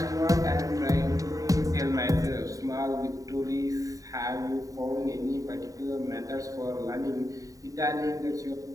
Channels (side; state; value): left; late; 0.16 ms